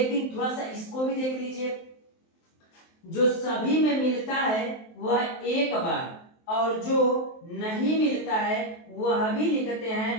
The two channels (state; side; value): late; right; 23 ms